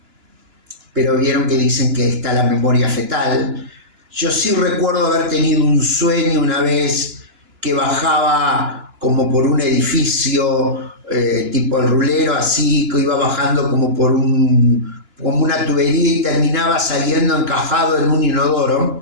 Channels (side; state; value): left; late; 2.9 ms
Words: pero vieron que dicen que está la memoria fetal. Yo sí recuerdo haber tenido un sueño una vez que bajaba como por un edificio tipo el rulero, así, que iba bajando como por como una tubería y terminaba saliendo encajado en un